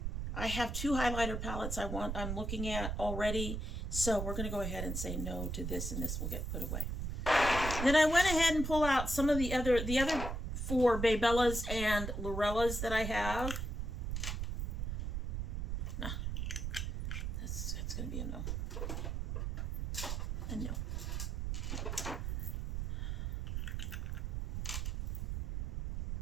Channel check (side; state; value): right; noise; rumble, 2 dB below the sound